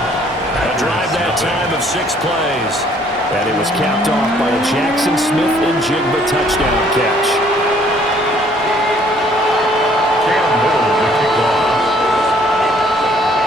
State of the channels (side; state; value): both; normal; correlation 0.61